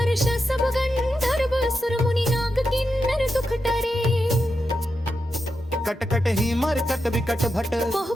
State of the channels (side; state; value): both; normal; correlation 0.87